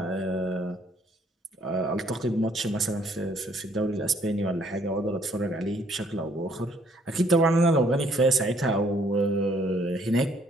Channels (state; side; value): normal; both; correlation 0.64